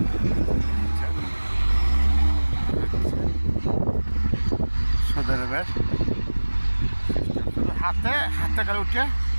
শুধু হাতে করে উঠে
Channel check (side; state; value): both; inverted; correlation -1.00